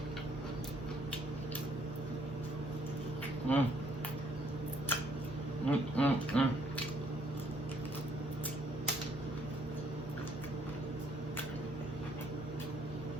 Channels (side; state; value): both; normal; correlation 0.66